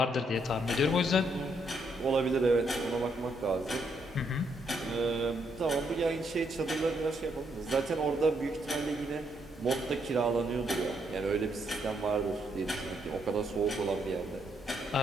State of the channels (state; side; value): normal; both; correlation 0.75